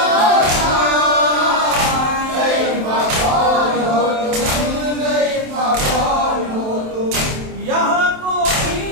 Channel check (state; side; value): late; left; 27 ms